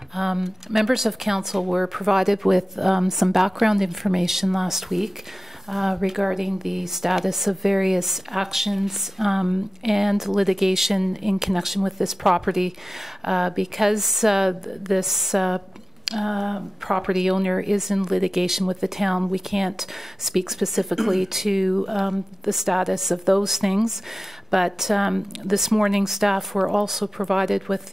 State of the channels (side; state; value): both; normal; correlation 0.96